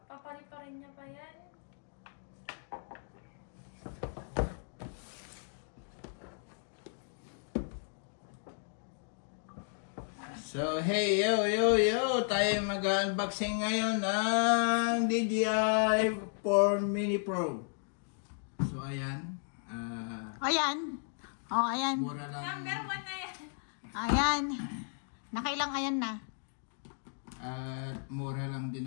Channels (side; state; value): right; silent; digital silence